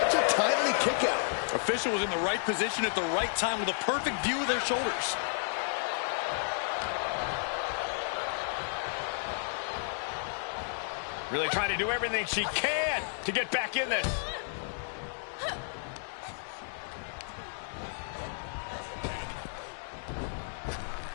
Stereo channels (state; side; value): silent; right; digital silence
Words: a timely kick out. Official was in the right position at the right time with a perfect view of their shoulders. Really trying to do everything she can to get back in this.